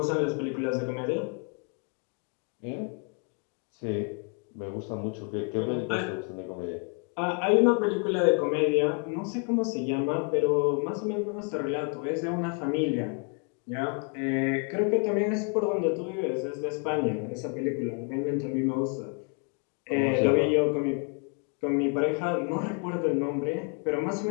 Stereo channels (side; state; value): right; quieter; 37.9 dB